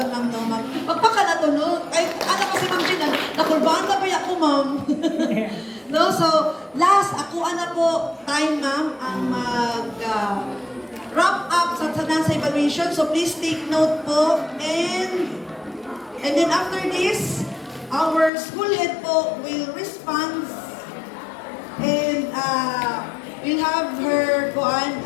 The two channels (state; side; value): drops out; right; at 18.3 s